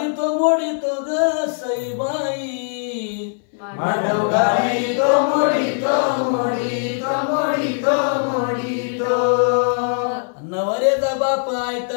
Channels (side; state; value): right; silent; 61 dB below the other